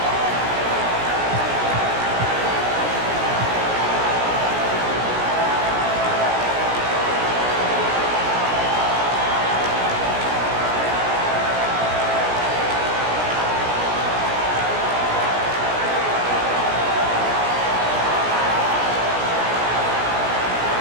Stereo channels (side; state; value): left; late; 17 ms